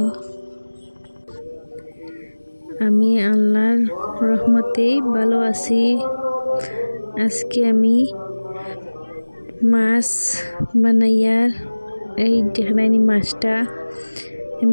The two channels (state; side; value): inverted; both; correlation -1.00